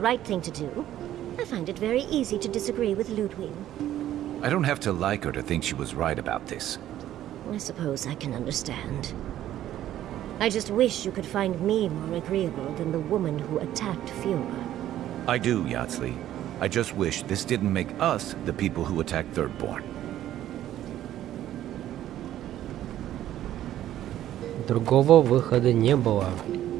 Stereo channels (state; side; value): quieter; left; 12.5 dB